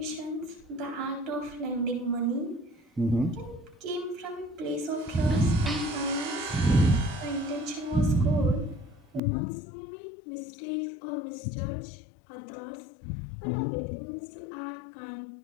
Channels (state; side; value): drops out; right; at 9.2 s